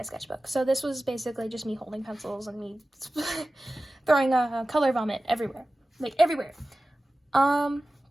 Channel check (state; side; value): normal; both; correlation 0.96